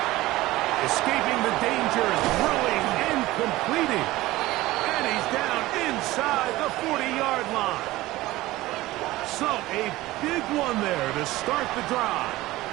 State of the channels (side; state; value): left; quieter; 17.9 dB